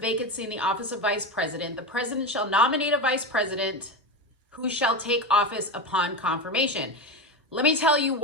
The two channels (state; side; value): normal; both; correlation 0.19